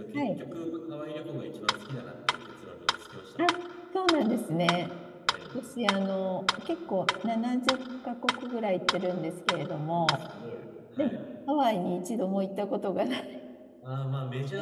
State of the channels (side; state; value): both; identical; correlation 1.00